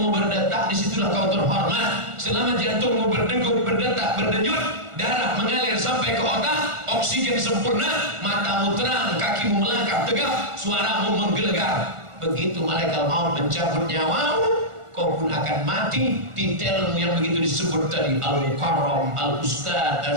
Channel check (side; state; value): left; late; 1.4 ms